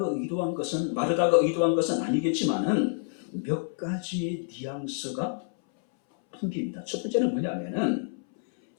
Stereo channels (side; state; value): right; silent; 59 dB below the other